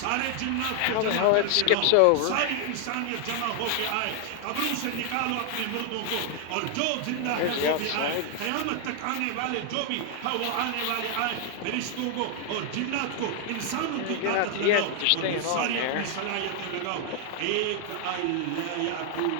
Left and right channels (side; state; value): both; different; correlation 0.00